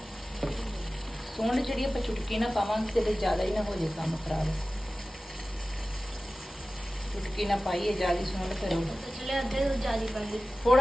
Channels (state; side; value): normal; both; correlation 0.96